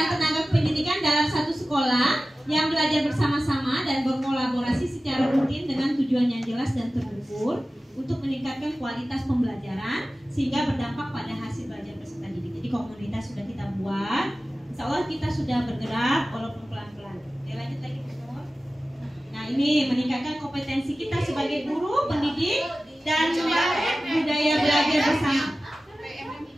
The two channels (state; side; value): normal; both; correlation 0.96